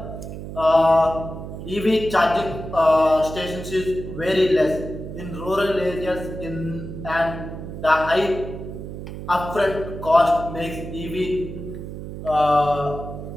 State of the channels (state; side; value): noise; right; hum, 9 dB below the sound